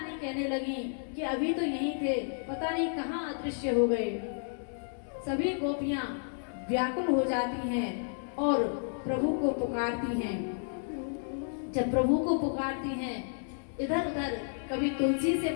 कहने लगी कि अभी तो यही थे, पता नहीं कहाँ अदृश्य हो गए। सभी गोपियां व्याकुल हो जाती हैं और प्रभु को पुकारती हैं। जब प्रभु को पुकारती हैं इधर उधर, कभी तुलसी से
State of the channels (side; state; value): right; silent; digital silence